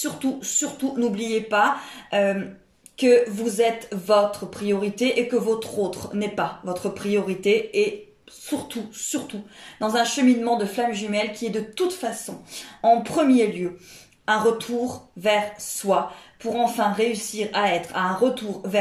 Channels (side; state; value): both; identical; correlation 1.00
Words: n'oubliez pas que vous êtes votre priorité et que votre autre n'est pas votre priorité. Et surtout, dans un cheminement de flamme jumelle qui est de toute façon, en premier lieu, un retour vers soi pour enfin réussir à être à un retour